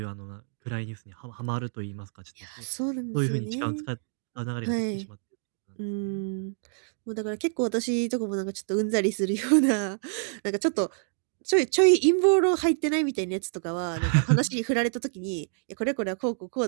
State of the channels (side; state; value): left; silent; digital silence